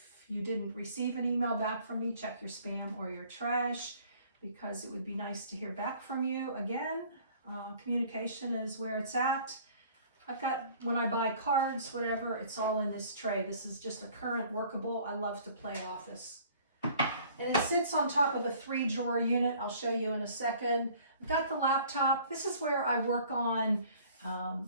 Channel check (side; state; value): both; inverted; correlation -0.53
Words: you didn't receive an email back from me, check your spam or your trash, because it would be nice to hear back from you. Again, communication is where it's at. I've got, when I buy cards, whatever, it's all in this tray. This is just a current workable. I love to play office. And it sits on top of a 3-drawer unit. I'll show you in a second. I've got the laptop. This is where I work on